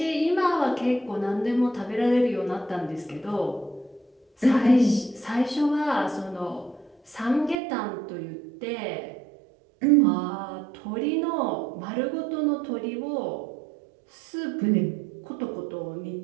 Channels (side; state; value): left; drops out; at 7.6 s